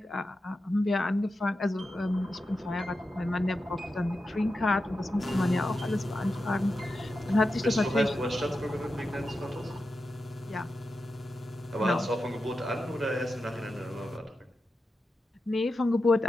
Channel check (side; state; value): both; normal; correlation 0.90